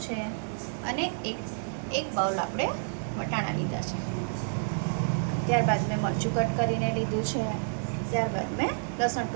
છે અને એક બાઉલ આપણે વટાણા લીધા છે। ત્યારબાદ મેં મરચું કટ કરીને લીધું છે, ત્યારબાદ મેં લસણ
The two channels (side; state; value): left; silent; 58 dB below the other